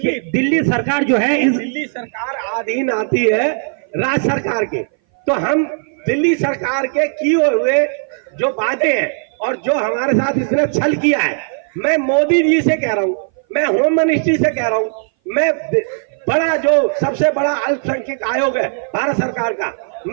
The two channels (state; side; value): silent; left; 59 dB below the other